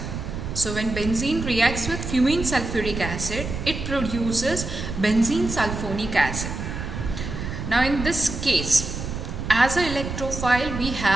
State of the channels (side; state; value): right; noise; rumble, 6 dB below the sound